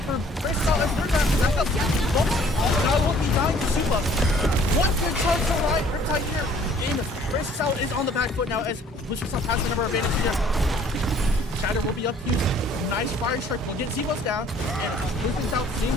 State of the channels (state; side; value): normal; both; correlation 0.57